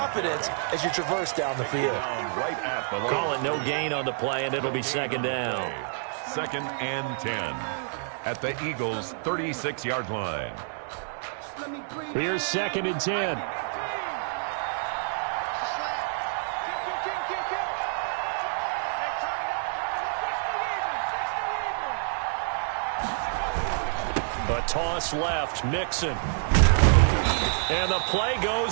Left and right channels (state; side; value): silent; left; digital silence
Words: as you traverse down the field. Right at the line. Call it no gain on the play, and it'll be second down. 2nd and 10 at the Eagles' 36-yard line. Here's 2nd and 10. A toss left, Mixon. And the play